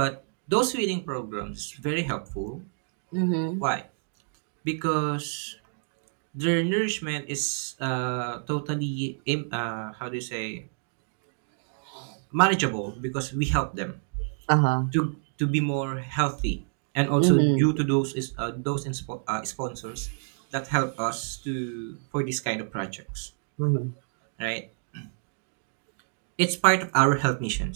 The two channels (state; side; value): silent; left; digital silence